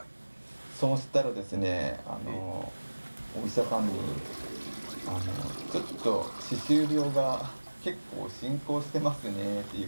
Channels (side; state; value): both; inverted; correlation -1.00